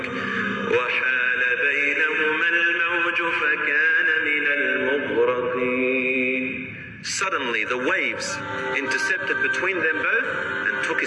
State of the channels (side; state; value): both; identical; correlation 1.00